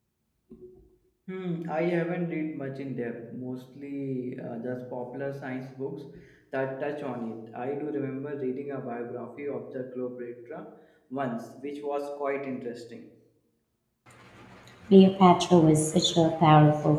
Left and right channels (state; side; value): identical; both; correlation 1.00